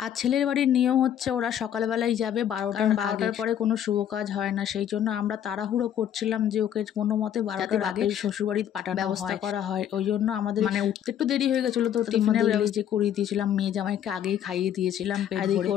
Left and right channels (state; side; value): quieter; right; 10.0 dB